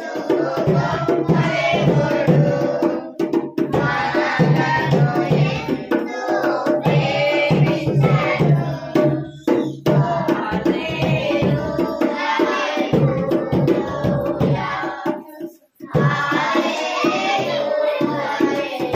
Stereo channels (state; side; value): identical; both; correlation 1.00